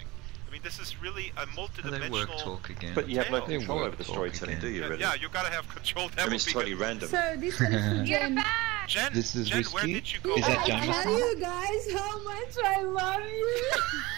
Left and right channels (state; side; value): quieter; left; 21.9 dB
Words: I mean, this is really a multidimensional. But you have no control over the storytelling, do you? Really? Yeah, you gotta have control. I mean, it's totally random. So this one is Jen. Jen, this is Jen, where did you go? Is that I tell you guys how much I love you.